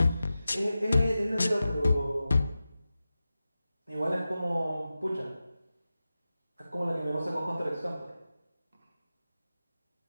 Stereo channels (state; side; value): inverted; both; correlation -0.93